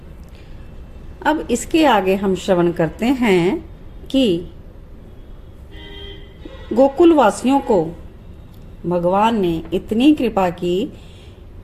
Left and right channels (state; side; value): identical; both; correlation 1.00